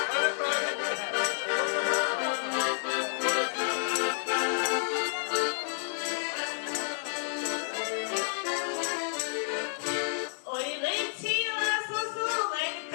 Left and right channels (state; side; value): silent; right; digital silence